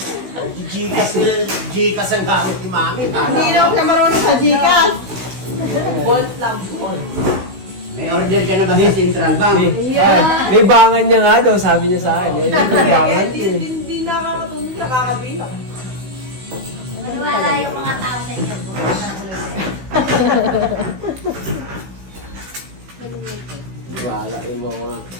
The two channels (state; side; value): late; left; 16 ms